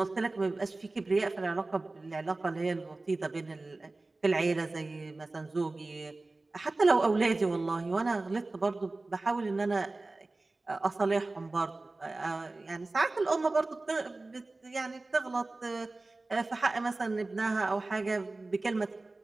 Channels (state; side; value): quieter; left; 3.2 dB